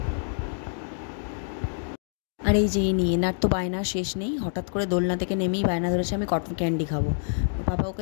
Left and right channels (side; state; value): right; silent; digital silence